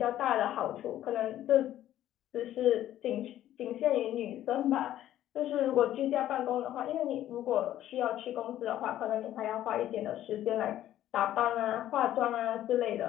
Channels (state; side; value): quieter; right; 12.6 dB